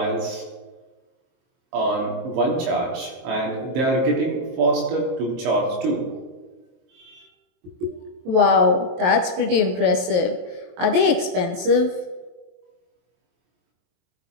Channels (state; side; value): late; left; 23 ms